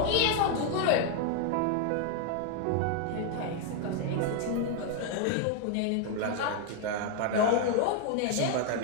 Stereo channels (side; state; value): both; different; correlation 0.00